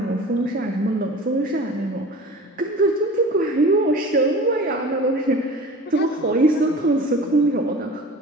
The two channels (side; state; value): both; normal; correlation 0.39